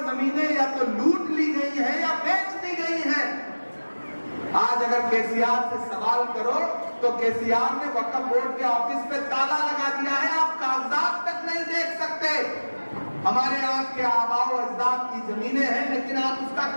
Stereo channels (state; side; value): inverted; both; correlation -1.00